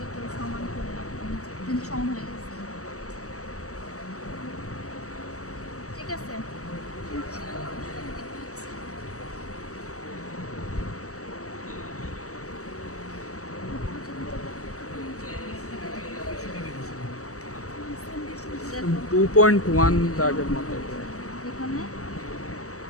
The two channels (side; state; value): right; late; 0.65 ms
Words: সমান করে রাখবো, কিন্তু সমান হয়ে গেছে ঠিক আছে। দেখো 2.1 দাগের মতো এখানে